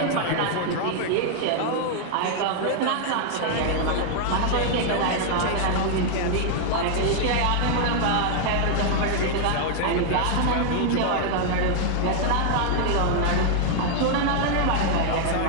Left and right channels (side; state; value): both; different; correlation 0.00